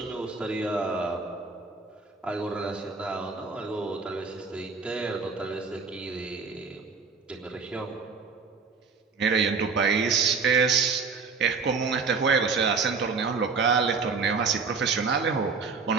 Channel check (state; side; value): quieter; left; 4.9 dB